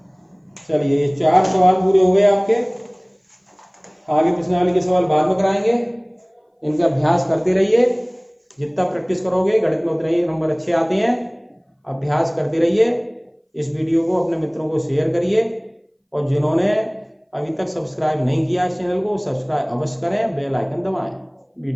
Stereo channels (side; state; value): both; identical; correlation 1.00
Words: चलिए ये 4 सवाल पूरे हो गए आपके, आगे प्रश्नावली के सवाल बाद में कराएंगे, इनका अभ्यास करते रहिए, जितना प्रैक्टिस करोगे गणित में उतने ही नंबर अच्छे आते हैं। अभ्यास करते रहिए, इस वीडियो को अपने मित्रों को शेयर करिए, और जिन्होंने अभी तक सब्सक्राइब नहीं किया इस चैनल को, सब्सक्राइब अवश्य करें, बेल आइकन दबाएं,